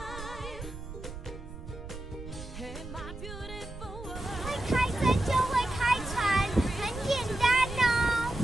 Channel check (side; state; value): right; noise; rumble, 11 dB below the sound